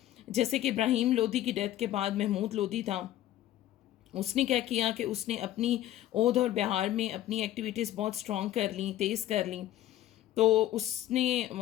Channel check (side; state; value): right; quieter; 13.5 dB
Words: जैसे कि इब्राहिम लोदी की डेथ के बाद महमूद लोदी था, उसने क्या किया कि उसने अपनी ओध और बिहार में अपनी एक्टिविटीज़ बहुत स्ट्रॉन्ग कर ली, तेज़ कर ली. तो उसने